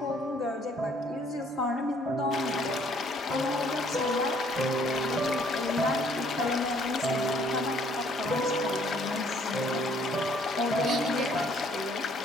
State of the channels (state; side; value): normal; both; correlation 0.62